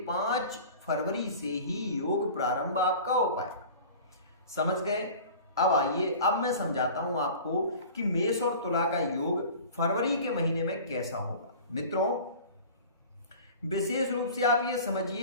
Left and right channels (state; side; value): inverted; both; correlation -0.41